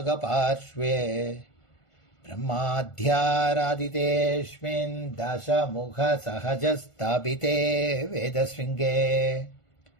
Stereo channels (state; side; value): late; right; 1.5 ms